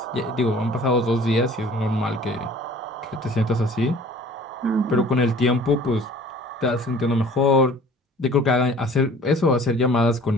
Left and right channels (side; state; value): both; normal; correlation 0.50